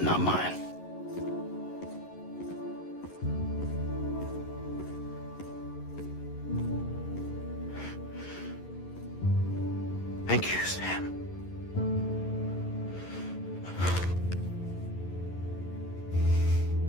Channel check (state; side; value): late; right; 11 ms